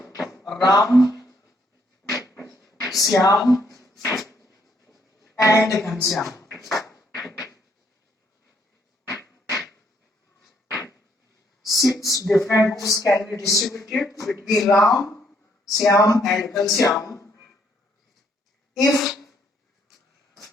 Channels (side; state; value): both; normal; correlation 0.70